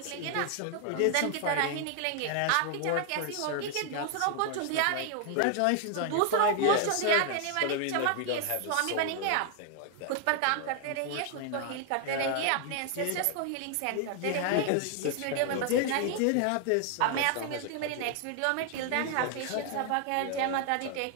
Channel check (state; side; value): different; both; correlation 0.00